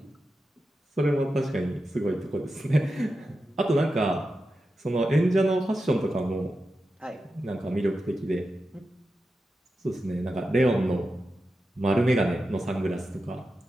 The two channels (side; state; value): both; normal; correlation 0.90